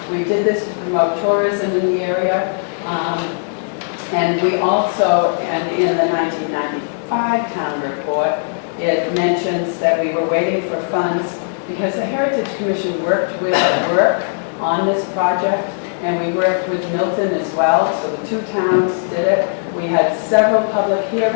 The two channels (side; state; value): right; silent; 67 dB below the other